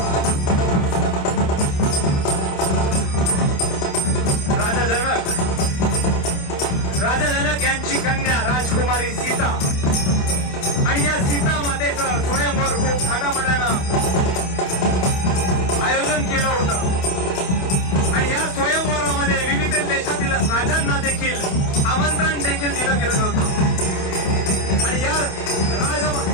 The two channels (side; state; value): right; late; 28 ms